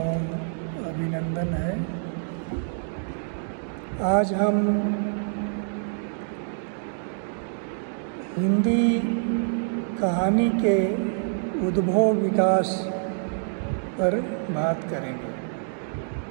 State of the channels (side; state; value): left; silent; digital silence